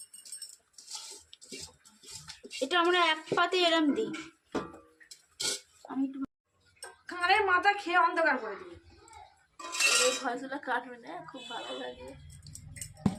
এটা আমরা এক পাতে এরম দিই। আমি একটু কানের মাথা খেয়ে অন্ধকার করে দিবি। এই ফসলা কাটবে না, খুব ভালো লাগে।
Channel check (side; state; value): both; identical; correlation 1.00